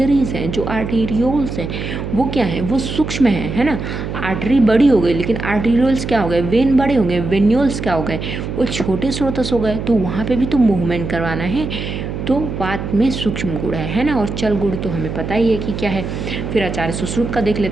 हैं, जो आर्टेरियोल्स हैं, वो क्या है, वो सूक्ष्म है ना। आर्टरी बड़ी हो गई लेकिन आर्टेरियोल्स क्या हो गए, वेन बड़े हो गए, वेन्यूल्स क्या हो गए, वो छोटे स्रोतस हो गए, तो वहाँ पे भी तो मूवमेंट करवाना है। तो वात में सूक्ष्म गुण है ना। और चल गुण तो हमें पता ही है कि क्या है। फिर आचार्य सुश्रुत का देख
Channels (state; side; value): noise; right; hum, 5 dB below the sound